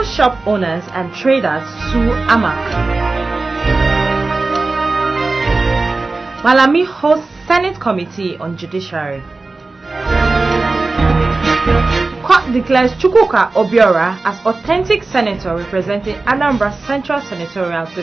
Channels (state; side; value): quieter; left; 3.5 dB